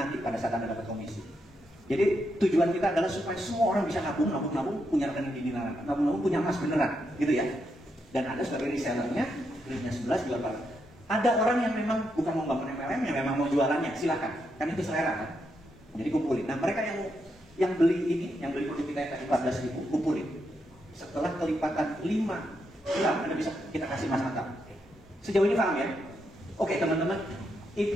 pada saat Anda dapat komisi. Jadi tujuan kita adalah supaya semua orang bisa nabung, punya rekening di dinaran. Nabung, punya emas beneran, gitu ya. Dan Anda sebagai resellernya, belinya 11 jual berapa? Ada orang yang memang bukan mau bangun MLM, yang memang mau jualannya, silakan. Kan itu selera kan. Jadi kumpulin. Nah mereka yang beli ini, yang beli produk kita yang tadi 14.000, kumpulin. Setelah kelipatan 5 gram, Anda bisa kita kasih mas antam. Sejauh ini paham ya? Oke teman-teman,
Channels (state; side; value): normal; both; correlation 0.81